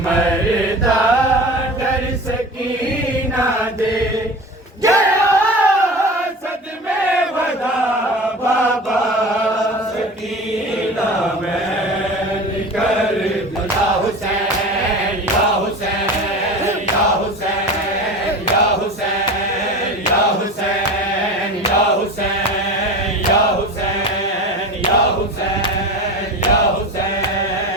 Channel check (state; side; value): normal; both; correlation 0.32